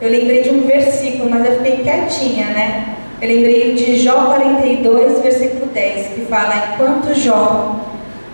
lembrei de um versículo, mas eu fiquei quietinha, né? Eu lembrei de Jó 42, versículo 10, que fala, enquanto Jó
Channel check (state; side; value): inverted; both; correlation -1.00